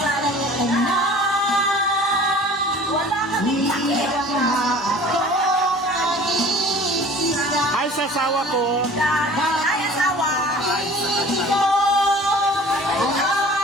Wala kami Ay, sa asawa ko. Ay, asawa.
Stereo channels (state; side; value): normal; both; correlation 0.45